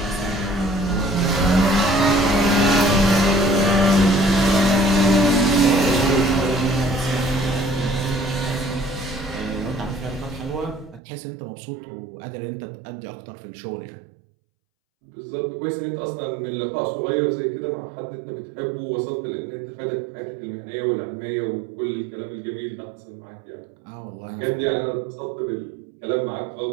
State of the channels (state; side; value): drops out; left; at 11.0 s